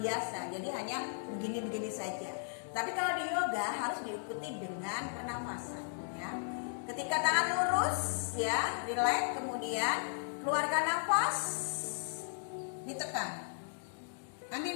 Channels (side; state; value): right; silent; digital silence